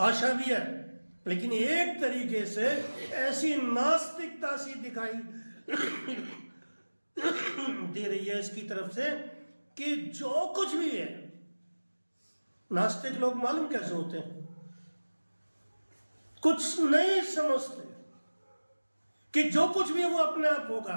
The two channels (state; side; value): inverted; both; correlation -1.00